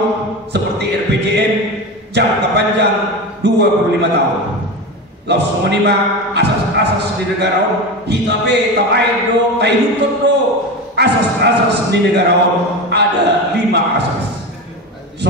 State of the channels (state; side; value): normal; both; correlation 0.23